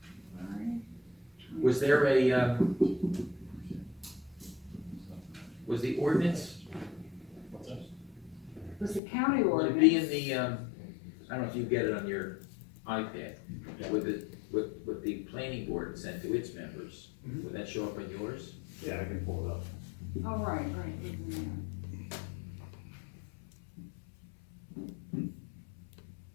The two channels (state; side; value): drops out; right; at 9.0 s